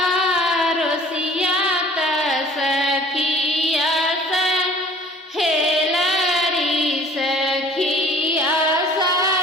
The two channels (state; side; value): normal; both; correlation 0.50